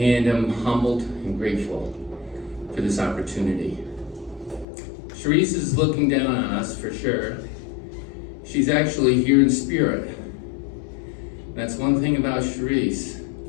I'm humbled and grateful for this opportunity. Charese is looking down on us for sure. She's actually here in spirit. That's one thing about Charese.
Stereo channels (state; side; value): drops out; right; at 4.7 s